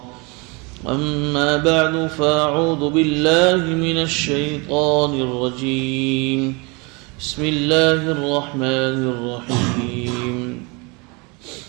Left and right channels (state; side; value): quieter; left; 28.9 dB